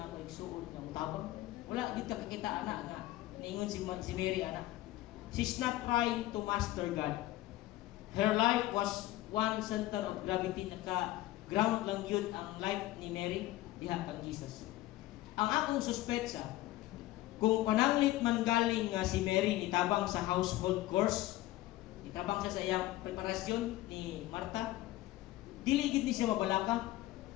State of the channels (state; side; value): quieter; right; 16.4 dB